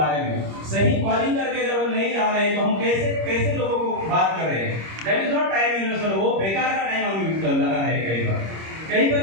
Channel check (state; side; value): late; left; 26 ms